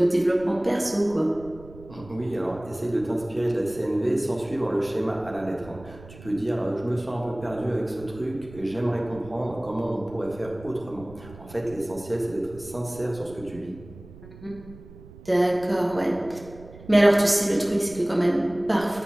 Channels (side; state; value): right; noise; rumble, 18 dB below the sound